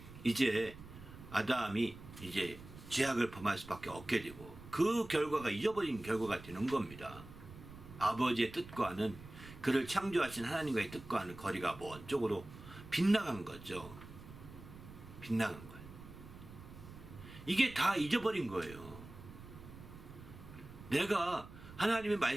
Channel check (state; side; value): noise; right; rumble, 16 dB below the sound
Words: 이제 아담이 이제 죄악을 범할 수밖에 없게 되고 그 결과가 잊어버린 결과가 되는 겁니다. 아버지의 뜻과는 그를 창조하신 하나님과의 뜻과는 거리가 먼 쪽으로 빗나간 거죠. 빗나간 거예요. 이게 다 잊어버린 거예요. 내가 하나님의